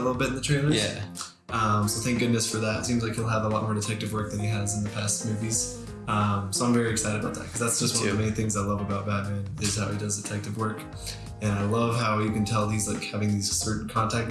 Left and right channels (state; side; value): identical; both; correlation 1.00